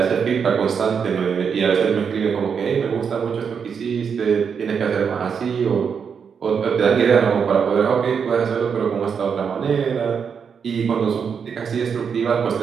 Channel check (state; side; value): quieter; left; 6.6 dB